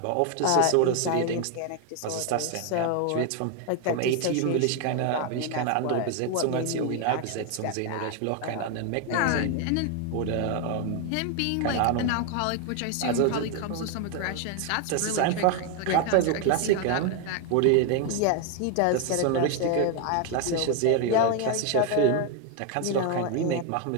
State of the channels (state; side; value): different; both; correlation 0.01